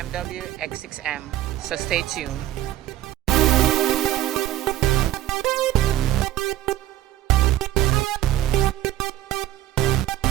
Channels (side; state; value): left; quieter; 13.7 dB